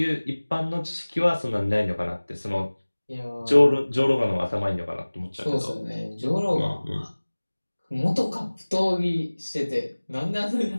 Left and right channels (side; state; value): both; inverted; correlation -1.00